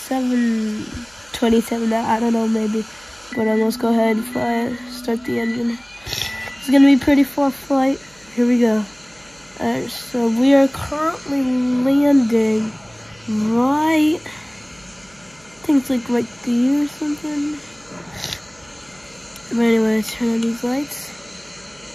out, I don't know, maybe. But let's go ahead and fly it, start the engine. It's gonna be pretty far flight. Here we go. Alright, so we are currently landing right, I think it's like right there or something. But anyway, turn on these lights.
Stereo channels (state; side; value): noise; right; hum, 29 dB below the sound